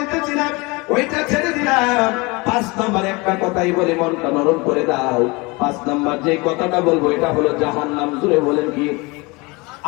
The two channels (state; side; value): quieter; right; 25.9 dB